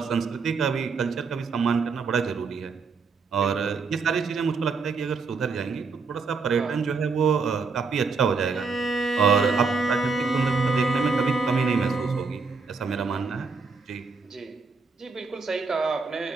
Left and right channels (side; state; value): left; quieter; 4.7 dB